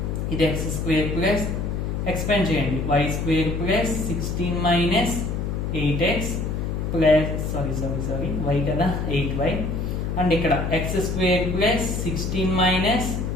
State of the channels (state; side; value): noise; left; hum, 2 dB below the sound